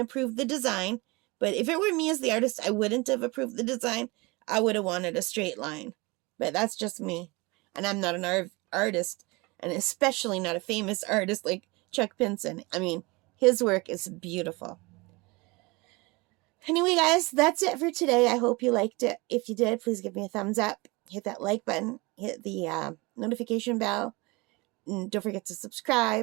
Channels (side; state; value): left; quieter; 25.0 dB